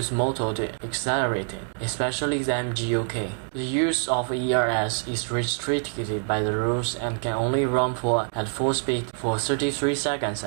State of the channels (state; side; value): silent; left; 57 dB below the other